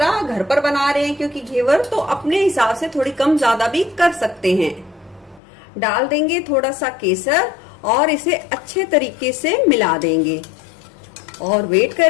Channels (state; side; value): drops out; right; at 5.4 s